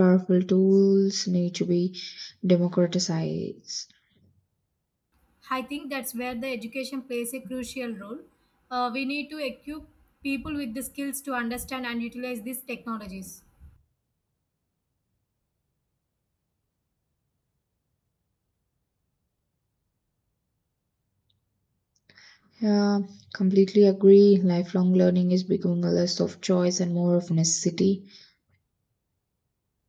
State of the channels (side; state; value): both; identical; correlation 1.00